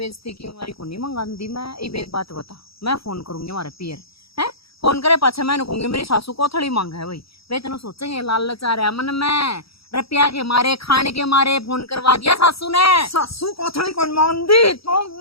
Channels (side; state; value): right; late; 0.76 ms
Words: की हमारी को नहीं मंगांदी। मैं एक बात बता, मैं फोन करूंगी हमारे पियर है, फोन करे पाछे मैं कहूंगी मेरी सासू को थोड़ी मांग है भाई, वे तेन सोचेंगे लाल लचा रहा मन में रुपया के मारे खाने के मारे फोन करवा दिया सासू ने। सासू कोथड़ी कौन मांगदी, तू